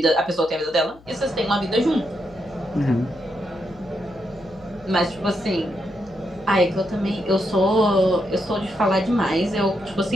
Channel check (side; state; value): left; noise; hum, 25 dB below the sound